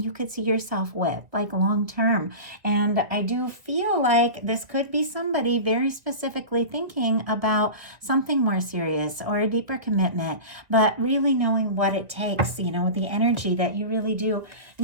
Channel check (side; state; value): left; late; 1.7 ms